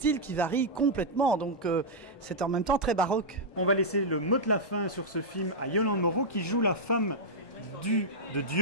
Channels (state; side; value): late; right; 1.2 ms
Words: qui varient complètement. Donc c'est en même temps très baroque. On va laisser le mot de la fin sur ce film à Yolande Moreau qui joue la femme de